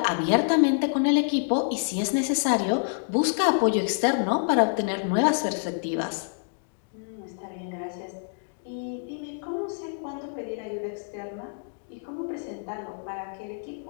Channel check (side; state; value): right; silent; digital silence